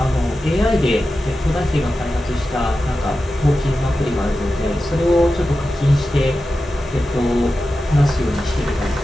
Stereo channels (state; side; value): normal; both; correlation 0.92